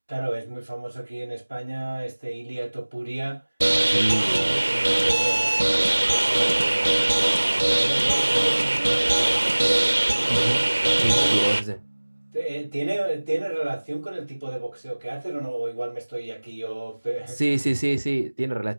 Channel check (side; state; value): both; inverted; correlation -1.00